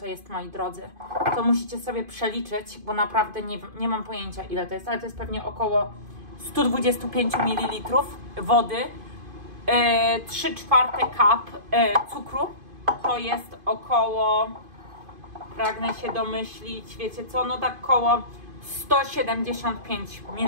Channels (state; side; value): late; left; 2.5 ms